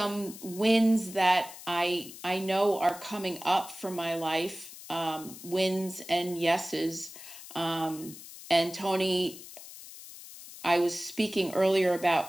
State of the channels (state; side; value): noise; left; hiss, 15 dB below the sound